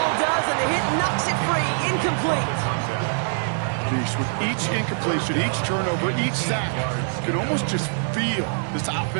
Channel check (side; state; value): left; silent; digital silence